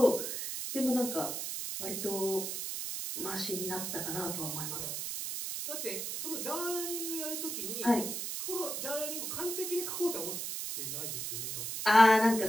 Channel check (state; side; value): noise; right; hiss, 4 dB below the sound